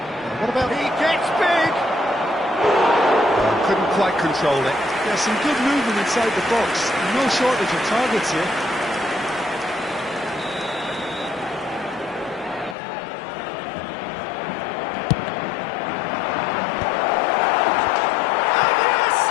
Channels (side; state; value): right; drops out; at 12.8 s